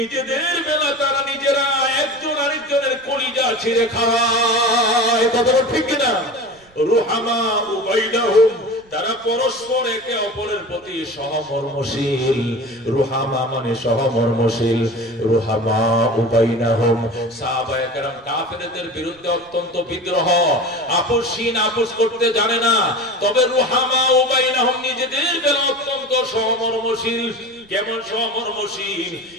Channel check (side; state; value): right; noise; rumble, 30 dB below the sound